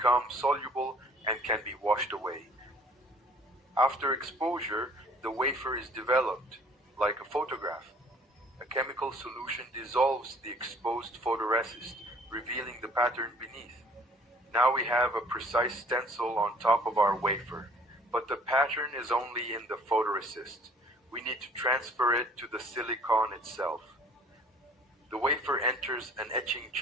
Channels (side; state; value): both; normal; correlation 0.54